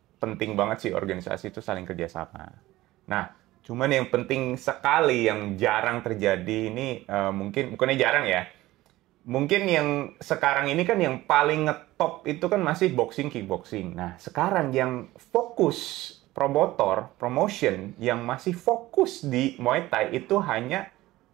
penting banget sih organisasi itu saling kerjasama. Nah, cuman yang penting sekali yang jarang terjadi ini bukannya jarang ya. Mungkin yang sekarang ini kan yang paling ngetop itu kan masih boxing, kickboxing. Nah, sekarang yang fokus promotion yang masih fokus di Muay Thai itu hanya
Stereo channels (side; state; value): left; quieter; 17.3 dB